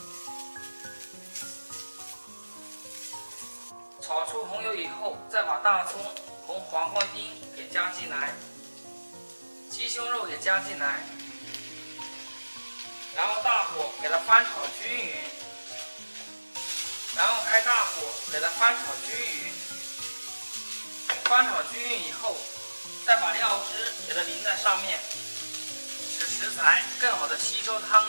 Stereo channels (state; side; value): inverted; both; correlation -1.00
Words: 炒出红油以后，再把大葱、红黄瓜丁给加进来，鸡胸肉也加进来，然后大火给它翻炒均匀，然后开大火给它翻炒均匀。翻炒均匀以后，再把料汁给它淋在上面，使食材更好的吸收汤